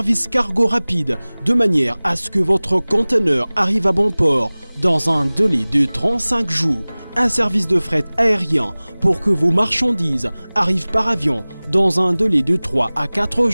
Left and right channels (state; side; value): inverted; both; correlation -1.00